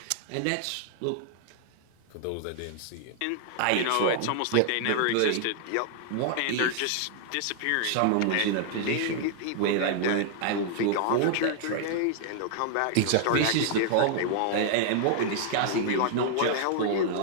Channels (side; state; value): both; different; correlation 0.00